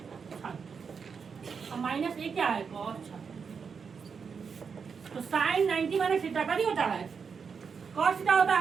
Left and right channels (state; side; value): quieter; left; 5.9 dB